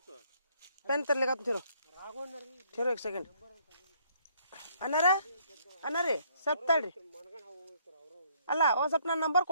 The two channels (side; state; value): both; inverted; correlation -0.66